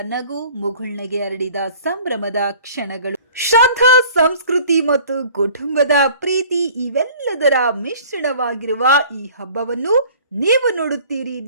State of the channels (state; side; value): inverted; both; correlation -0.48